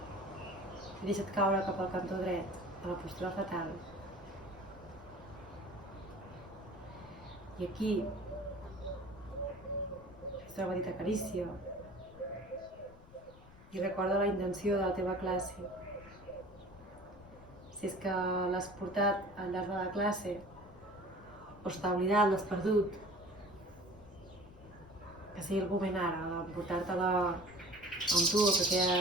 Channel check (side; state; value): left; noise; rumble, 21 dB below the sound